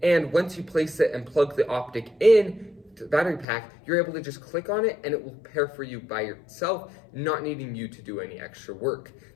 And once you place it and plug the optic in to the battery pack, you're able to just click on it and it will pair for you by yourself, not needing you to do any extra work.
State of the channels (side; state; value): right; drops out; at 3.5 s